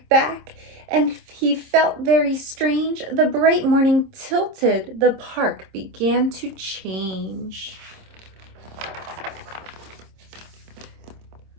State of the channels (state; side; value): late; left; 26 ms